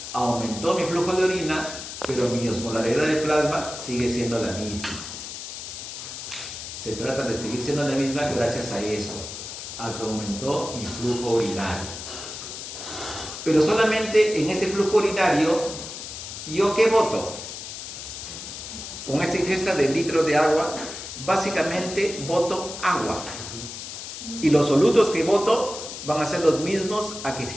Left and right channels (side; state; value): left; noise; hiss, 9 dB below the sound